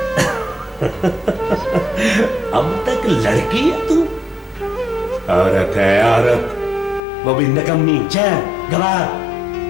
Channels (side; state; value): right; drops out; at 7.0 s